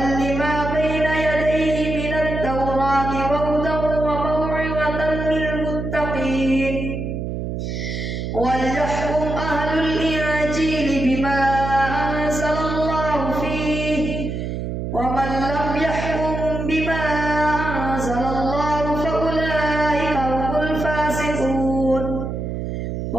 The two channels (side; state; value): right; noise; hum, 4 dB below the sound